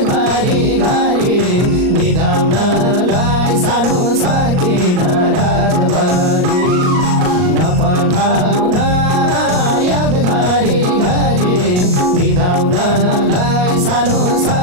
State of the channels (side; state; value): left; late; 38 ms